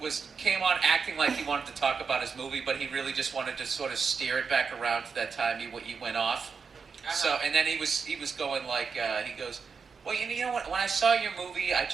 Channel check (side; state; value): left; quieter; 5.5 dB